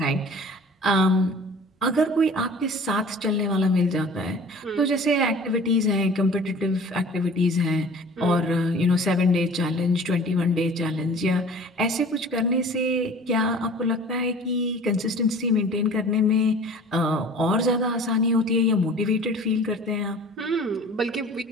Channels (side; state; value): both; normal; correlation 0.45